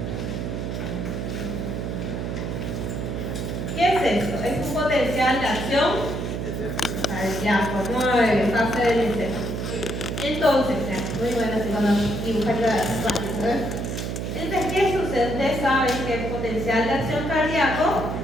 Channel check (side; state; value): right; noise; hum, 3 dB below the sound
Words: ¿Qué es esto? Es un potencial de acción cardíaco, 9, fase del encéfalo. Entonces, muy bueno así cuando dibujan las fases, ¿verdad? Entonces, ¿qué sucede? Ustedes saben que el potencial de acción cardíaco